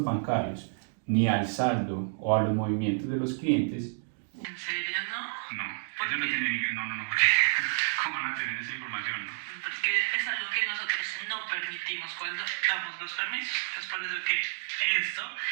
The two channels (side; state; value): left; silent; digital silence